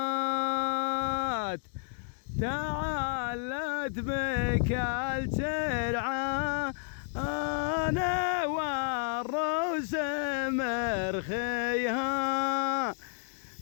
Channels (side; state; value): right; silent; 57 dB below the other